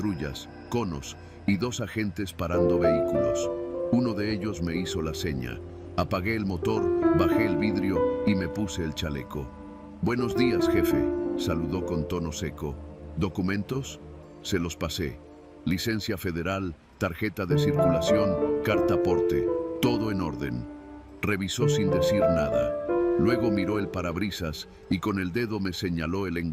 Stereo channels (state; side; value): identical; both; correlation 1.00